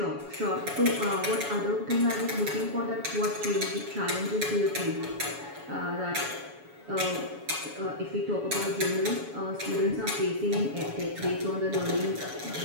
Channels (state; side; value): late; left; 7.1 ms